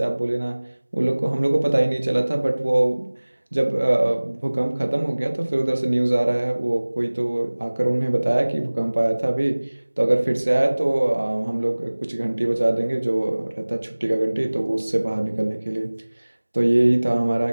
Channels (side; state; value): both; inverted; correlation -1.00